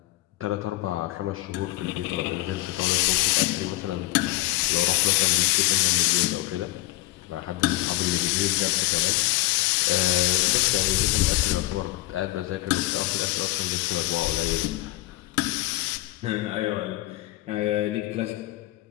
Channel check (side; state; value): right; quieter; 18.9 dB